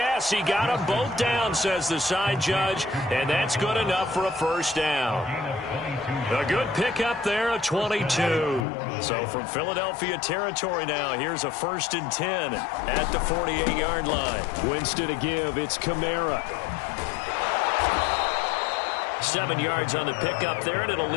he got them both down, says the side judge. And that's good enough for a first down. A good pickup there, a 22. So from Philadelphia territory now, here's a 1st and 10 at the 48-yard line. Winston to give, it's Kamara. 7 yards on the pickup there, and it'll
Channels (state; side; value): drops out; right; at 8.7 s